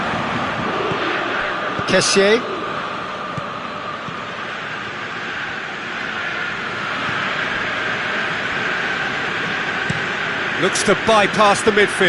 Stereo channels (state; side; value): identical; both; correlation 1.00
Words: Kessié. Looks to bypass the